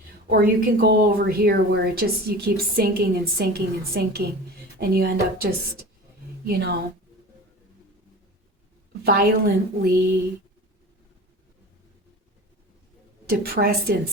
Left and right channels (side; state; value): both; normal; correlation 0.36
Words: Or you can go over here where you keep sinking and sinking and sinking, and you end up just, violently depressed